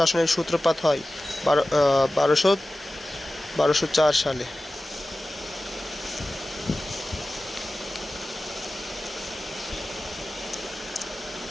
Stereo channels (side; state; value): both; normal; correlation 0.96